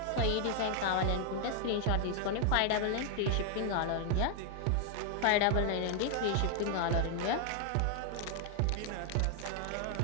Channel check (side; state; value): both; different; correlation 0.00